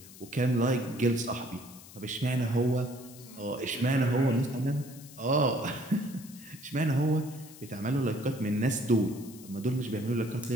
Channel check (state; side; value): noise; left; hiss, 18 dB below the sound